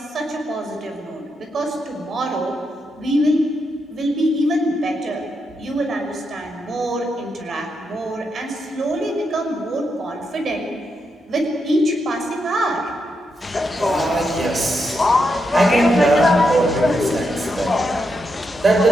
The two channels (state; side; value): normal; both; correlation 0.83